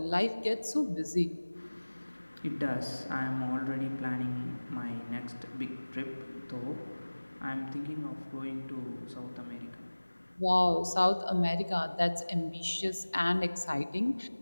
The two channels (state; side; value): inverted; both; correlation -1.00